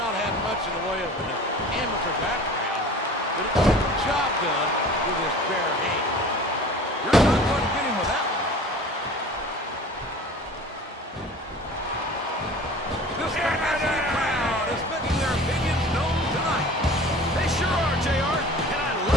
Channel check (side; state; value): both; normal; correlation 0.42